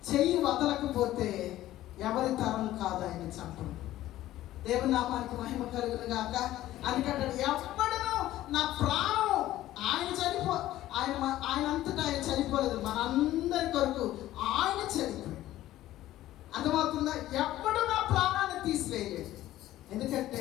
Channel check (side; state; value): right; quieter; 14.6 dB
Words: చెయ్యి వదలకపోతే ఎవరి తరం కాదు ఆయన చంపడం. దేవుని నామానికి మహిమ కలుగును గాక. అందుకంటాడు ఎవడను నా ప్రాణం ఆయన అంతటా ఆయన చనిపోలేదు, మనందరి కొరకు ఆయన చనిపోయాడు. అర్థమవుతుందా? ఎప్పుడు నా ప్రాణాన్ని తీసివేయలేదు.